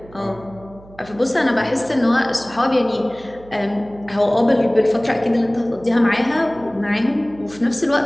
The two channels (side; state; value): right; noise; hum, 22 dB below the sound